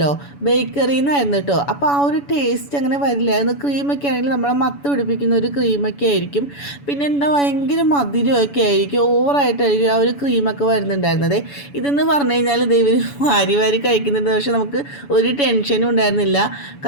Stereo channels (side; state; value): right; late; 7.0 ms